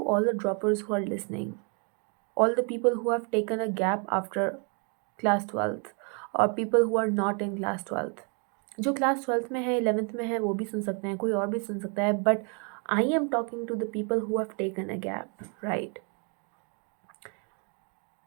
all the droppers who are listening, all the people who have taken a gap after class 12th, or people who are not in class 12th. जो class 12th में है, 11th में है, वो भी सुन सकते हैं, कोई और भी सुन सकता है, but I am talking to the people who have taken a gap, right?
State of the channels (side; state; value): left; quieter; 37.7 dB